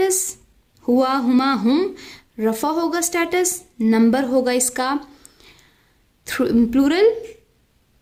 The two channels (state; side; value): identical; both; correlation 1.00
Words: हुआ, हुमा, हुम, रफ़ा होगा स्टेटस, नंबर होगा इसका प्लूरल,